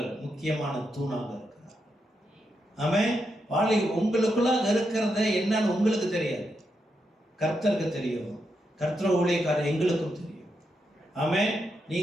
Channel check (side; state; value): both; normal; correlation 0.83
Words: முக்கியமான தூணாக இருக்கிறார். ஆமென். உங்களுக்குள்ள இருக்கிறத என்னன்னு உங்களுக்கு தெரியாது, கர்த்தருக்கு தெரியும். கர்த்தர் ஊழியக்காரர் எங்களுக்கும் தெரியும். ஆமென்.